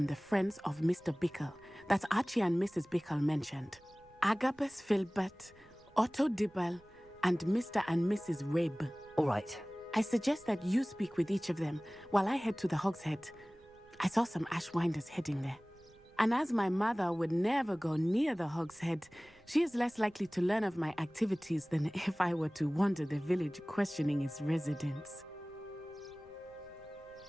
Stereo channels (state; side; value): noise; right; rumble, 28 dB below the sound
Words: the friends of Mr. Bickle that Archie and Mrs. Bickle mentioned. Agabus Filbert, Otto Dibble, and Mr. and Mrs. Rabe. All right. I suggest that you speak with each of them while I head to the Hogshead. I saw some Ashwinders heading there. And as my mother would never go near the Hogshead, she is less likely to learn of my activities than if I were to wander the village questioning its residents.